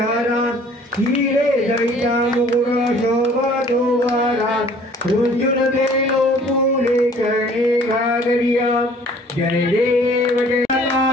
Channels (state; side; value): normal; both; correlation 0.54